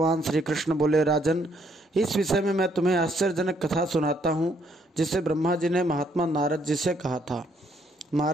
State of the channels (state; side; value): normal; both; correlation 0.70